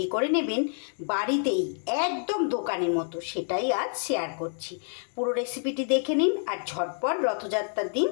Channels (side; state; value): right; silent; 59 dB below the other